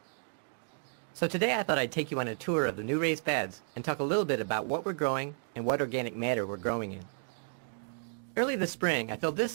So today I thought I'd take you on a tour of the new raised beds and talk a little bit about what we're growing and what organic matter we're growing in. Early this spring, I filled this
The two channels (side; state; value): left; silent; 56 dB below the other